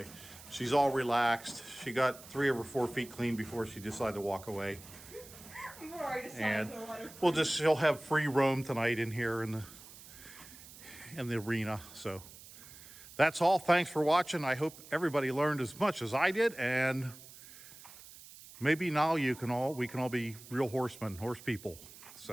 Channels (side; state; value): right; noise; hiss, 18 dB below the sound